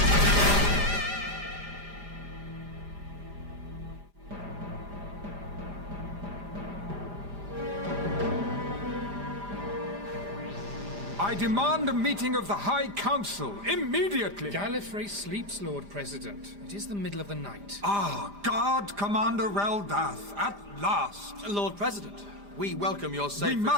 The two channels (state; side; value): late; left; 5.0 ms